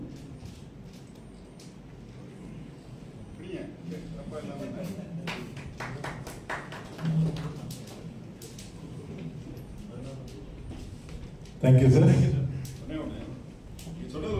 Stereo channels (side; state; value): both; identical; correlation 1.00